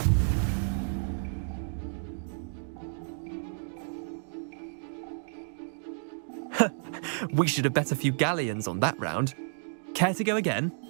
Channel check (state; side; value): silent; left; digital silence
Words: We should have bet a few galleons on that round. Care to go again?